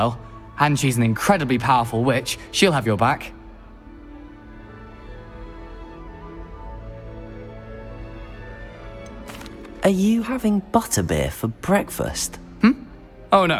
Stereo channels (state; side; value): identical; both; correlation 1.00